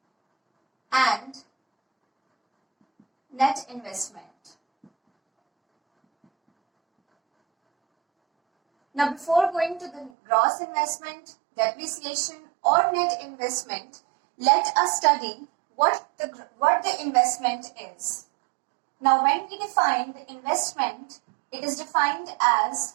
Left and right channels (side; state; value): left; drops out; at 10.1 s